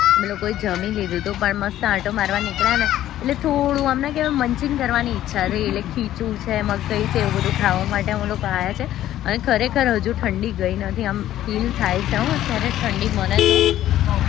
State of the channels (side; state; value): right; quieter; 12.9 dB